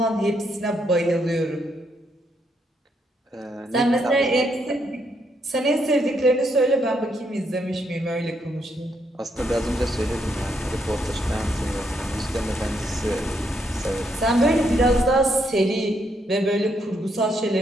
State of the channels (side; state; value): both; normal; correlation 0.76